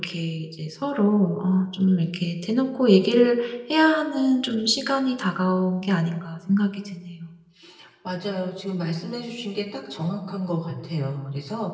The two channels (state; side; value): identical; both; correlation 1.00